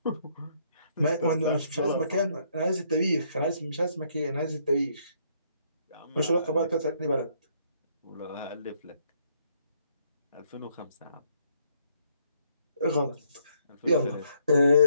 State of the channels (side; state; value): both; inverted; correlation -0.69